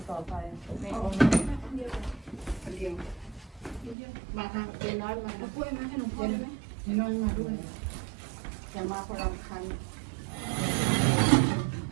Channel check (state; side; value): drops out; left; at 4.0 s